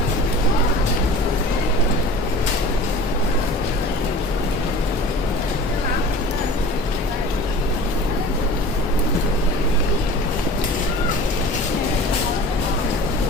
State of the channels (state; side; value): normal; both; correlation 0.41